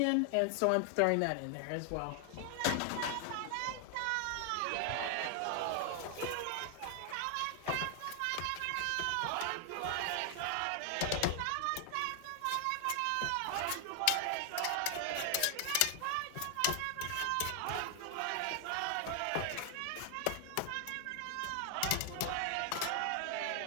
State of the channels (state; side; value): different; both; correlation 0.00